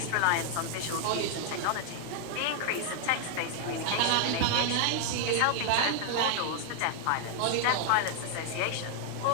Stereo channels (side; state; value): both; different; correlation 0.00